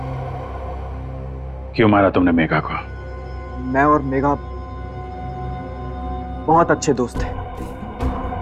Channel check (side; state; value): both; identical; correlation 1.00